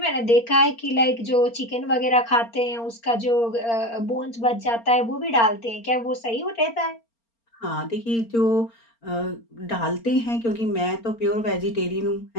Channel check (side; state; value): right; late; 4.3 ms